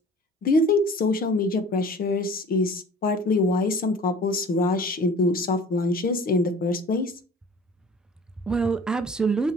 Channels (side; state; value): both; normal; correlation 0.45